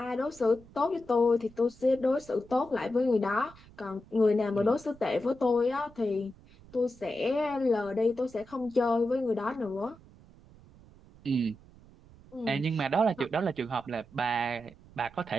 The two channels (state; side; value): noise; right; rumble, 23 dB below the sound